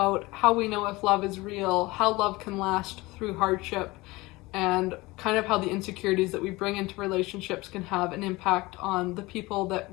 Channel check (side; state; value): right; quieter; 21.5 dB